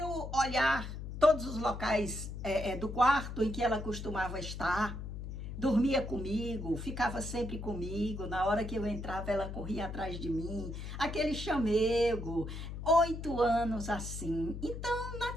olhar todos os locais do quarto em que ela costumava estar, dormia comigo, ficava sempre comigo, na hora que eu entrava ela corria atrás de mim, aquele chamego, 8 anos assim. Então,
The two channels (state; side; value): noise; left; hum, 7 dB below the sound